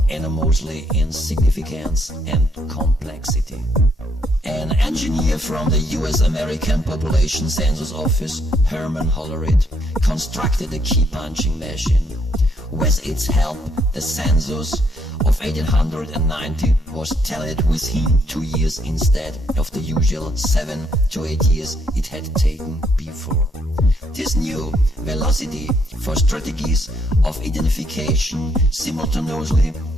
enormously in significance and complexity. An engineer from the US-American Population Census Office, Herman Hollerith, constructed a key-punching machine. With its help, the census of 1890 was tallied within 2 years instead of the usual 7 to 8 years it had taken before. This new velocity for strategies of identification simultaneously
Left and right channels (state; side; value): normal; both; correlation 0.72